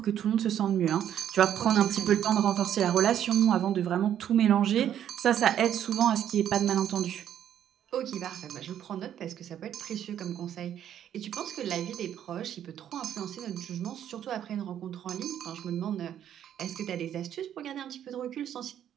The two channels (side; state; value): left; quieter; 10.2 dB